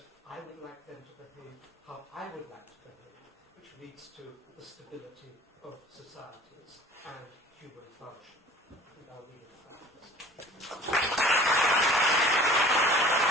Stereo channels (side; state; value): both; normal; correlation 0.46